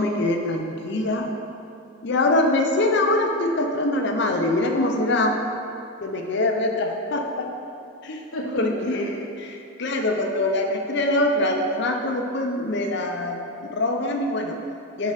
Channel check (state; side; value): normal; both; correlation 0.11